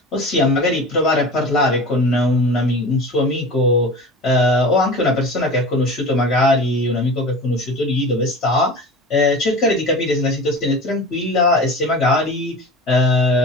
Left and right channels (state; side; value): normal; both; correlation 0.35